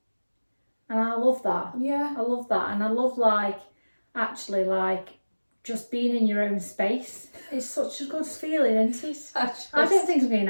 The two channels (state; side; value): inverted; both; correlation -1.00